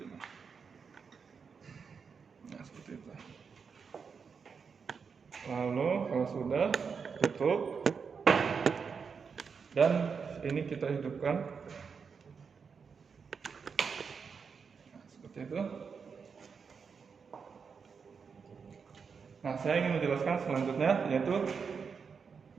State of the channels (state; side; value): quieter; left; 5.8 dB